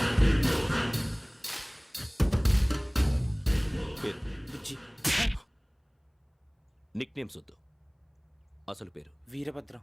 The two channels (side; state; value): both; identical; correlation 1.00